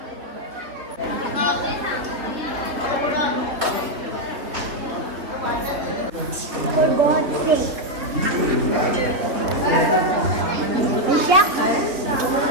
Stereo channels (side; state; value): left; late; 3.3 ms